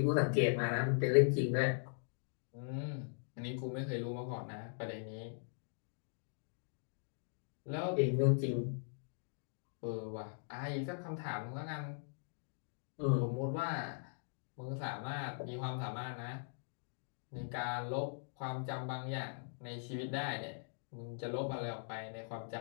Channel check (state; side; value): silent; right; digital silence